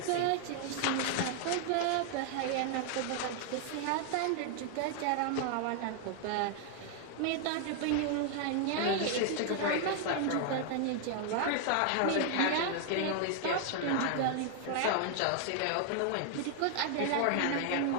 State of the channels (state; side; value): different; both; correlation 0.00